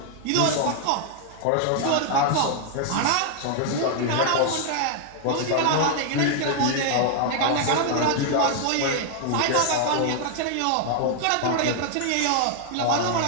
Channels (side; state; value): both; different; correlation 0.00